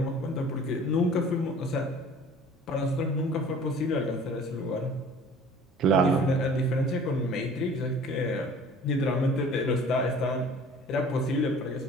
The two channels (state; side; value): normal; both; correlation 0.47